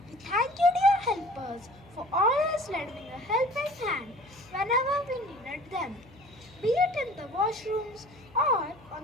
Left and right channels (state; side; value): noise; left; hum, 25 dB below the sound